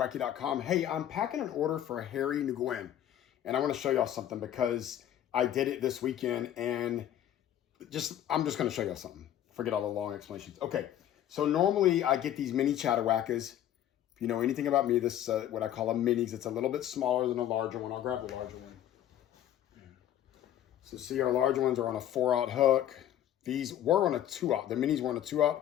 Hey, I'm packing an order for Harry Nguyen. And I want to show y'all something because I did it this weekend and I'm just going to show y'all something. Forget all the long explanations. Okay, so normally I get these mini chatterwackers. If you know anything about me, this what I call a minis. It's a little bit smaller than a larger one. I'll grab the larger one. So see, our larger ones are on a 4/0 hook. These were on a 2/0. The minis were on a 2/0.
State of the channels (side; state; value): right; quieter; 11.4 dB